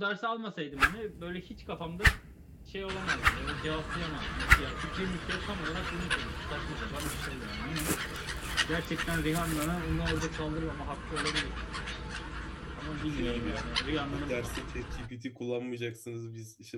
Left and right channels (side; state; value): both; identical; correlation 1.00